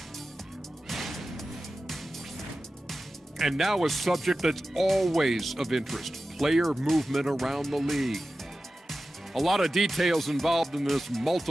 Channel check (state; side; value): normal; both; correlation 0.94